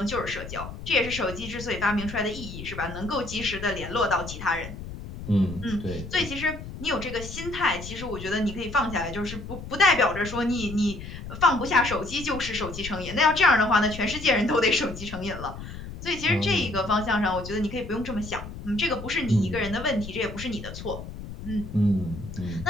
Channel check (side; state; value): left; noise; rumble, 11 dB below the sound